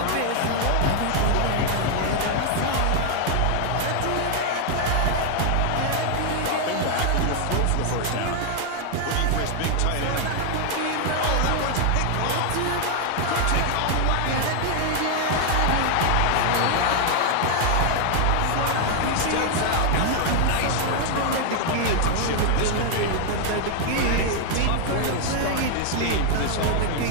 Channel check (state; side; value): different; both; correlation 0.00